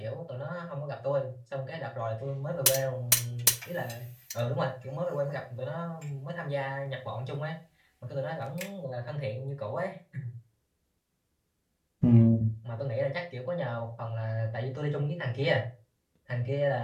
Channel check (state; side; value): identical; both; correlation 1.00